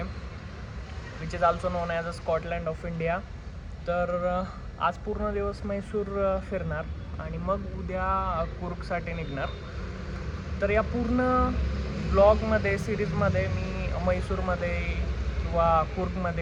which is also non as a Scotland of India. तर आज पूर्ण दिवस मैसूर फिरणार आणि मग उद्या कुर्गसाठी निघणार. तर या पूर्ण ब्लॉगमध्ये सिरीजमध्ये मी मैसूरमध्ये किंवा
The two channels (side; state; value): both; identical; correlation 1.00